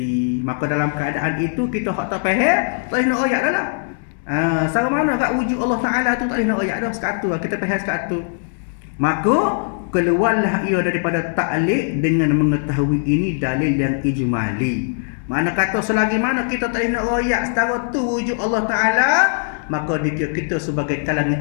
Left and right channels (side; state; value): right; silent; 66 dB below the other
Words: Maka dalam keadaan itu kita hak tak faham, tak boleh nak ayat dah lah. Sama mana kat wujud Allah Ta'ala tu tak boleh nak ayat dah, sekatu lah, kita faham sekatu. Maka keluarlah ia daripada ta'liq dengan mengetahui ini dalil yang ijmali. Mana kata selagi mana kita tak boleh nak ayat setara tu wujud Allah Ta'ala, maka dikira kita sebagai kalangan